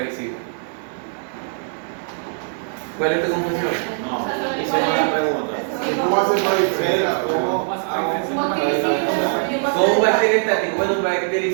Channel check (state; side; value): silent; left; 65 dB below the other